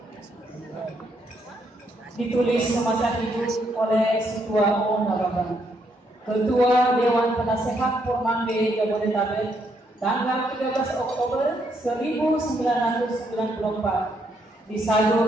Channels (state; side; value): normal; both; correlation 0.75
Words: Ditulis semasa hidup oleh Ketua O. Nababan, Ketua Dewan Penasehat Pormande Jabodetabek, tanggal 13 Oktober 1994,